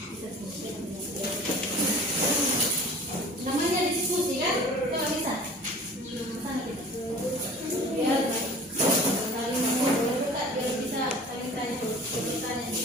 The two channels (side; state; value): both; normal; correlation 0.44